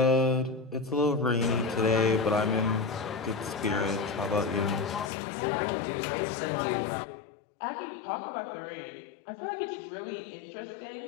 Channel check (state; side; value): drops out; right; at 5.1 s